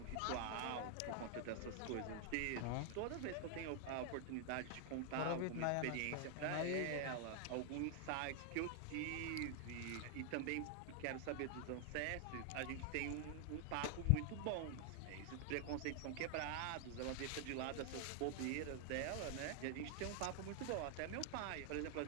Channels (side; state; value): both; different; correlation 0.00